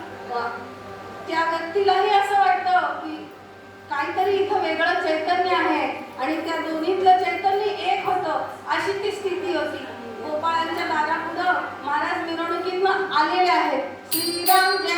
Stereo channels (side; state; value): both; identical; correlation 1.00